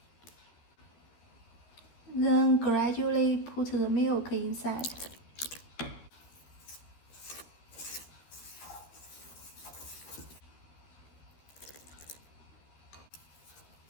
Then gradually put the milk inside.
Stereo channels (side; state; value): right; late; 13 ms